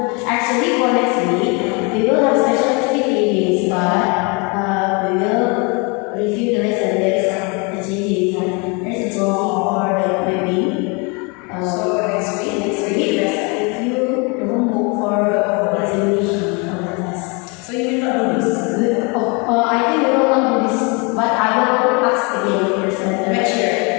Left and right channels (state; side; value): quieter; right; 31.2 dB